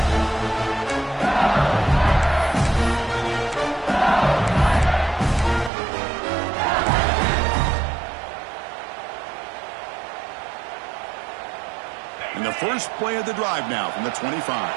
And the first play of the drive now from the 25.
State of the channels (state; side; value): drops out; left; at 5.7 s